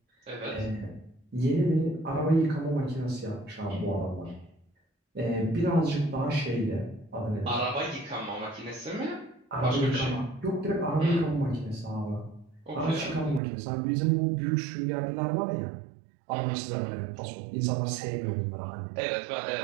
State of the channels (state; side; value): drops out; left; at 13.4 s